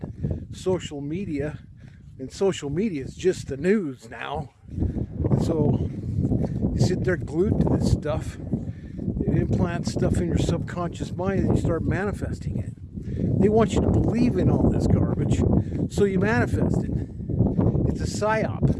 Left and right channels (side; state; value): both; identical; correlation 1.00